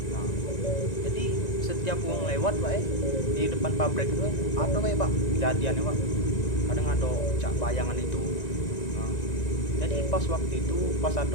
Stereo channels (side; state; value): right; late; 1.9 ms